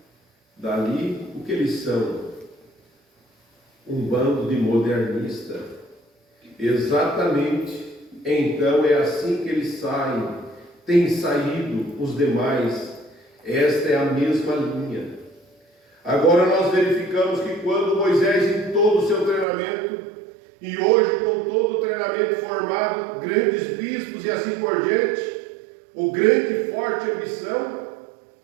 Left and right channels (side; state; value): left; drops out; at 19.5 s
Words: dali, o que eles são? Um bando de modernistas. Exatamente. Então é assim que eles saem. Tem saído os demais. Esta é a mesma linha. Agora nós verificamos que quando Moisés, em todo o seu treinamento, e hoje com todo o treinamento formado, grandes bispos e assim por diante, o grande e forte ambição,